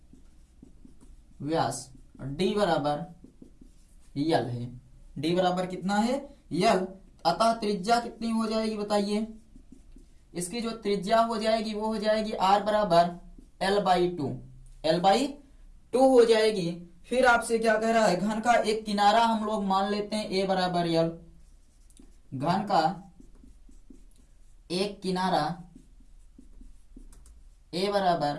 d बराबर यल है। d बराबर कितना है, यल। अतः त्रिज्या कितनी हो जाएगी बताइए। इसकी जो त्रिज्या हो जाएगी वो हो जाएगी r बराबर l/2, l/2 हो जाएगी। फिर आपसे क्या कह रहा है, घन का एक किनारा हम लोग मान लेते हैं a बराबर यल। घन का एक किनारा a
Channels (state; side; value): identical; both; correlation 1.00